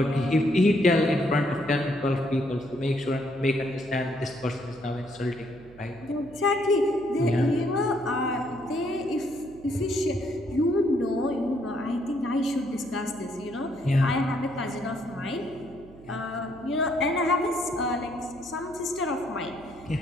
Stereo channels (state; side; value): noise; right; hum, 21 dB below the sound